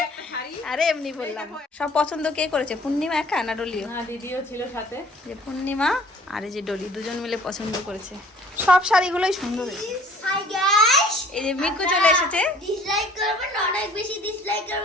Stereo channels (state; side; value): normal; both; correlation 0.53